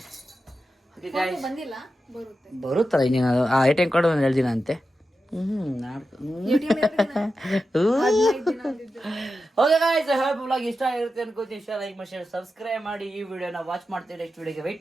ಬಂದಿಲ್ಲ, ಬರುತ್ತಲ್ಲ ಇನ್ನೇನು. ಆ ATM ಕಾರ್ಡ್ ಒಂದು ಹೇಳ್ದಿನ ಅಂತೆ. ಓಕೆ ಗಾಯ್ಸ್, ಬ್ಲಾಗ್ ಇಷ್ಟ ಆಗಿರುತ್ತೆ ಅನ್ಕೋತೀನಿ. ಇಷ್ಟ ಲೈಕ್ ಮಾಡಿ, ಶೇರ್, ಸಬ್ಸ್ಕ್ರೈಬ್ ಮಾಡಿ. ಈ ವಿಡಿಯೋನ ವಾಚ್ ಮಾಡ್ತೀರಿ, ನೆಕ್ಸ್ಟ್ ವಿಡಿಯೋಗೆ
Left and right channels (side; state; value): both; normal; correlation 0.91